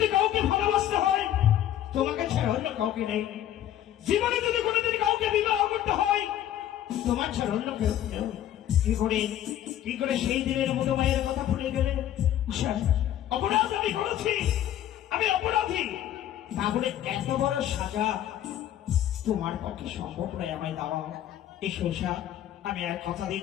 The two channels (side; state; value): right; quieter; 11.7 dB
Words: কাউকে ভালোবাসতে হয় তোমাকে ছাড়া অন্য কাউকে নেই, জীবনে যদি কোনোদিন কাউকে বিবাহ করতে হয় তোমার ছাড়া অন্য কেউ নেই। কি করে সেই দিনের মতো মায়ের কথা ভুলে গেলে? উষা, অপরাধ আমি করেছি, আমি অপরাধী, তাহলে এত বড় সাজা তোমার পক্ষে সম্ভব নয় আমায় দেওয়া। এসো উষা, আমি আর কথা